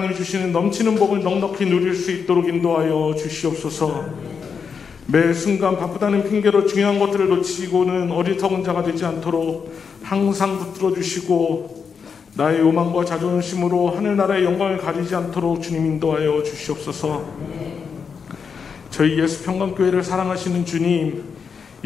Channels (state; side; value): quieter; right; 6.1 dB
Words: 주시는 넘치는 복을 넉넉히 누릴 수 있도록 인도하여 주시옵소서. 매 순간 바쁘다는 핑계로 중요한 것들을 놓치고는 어리석은 자가 되지 않도록 항상 붙들어 주시고 나의 요망과 자존심으로 하늘나라의 영광을 가리지 않도록 주님 인도하여 주시옵소서. 저희 예수평강교회를 사랑하시는 주님,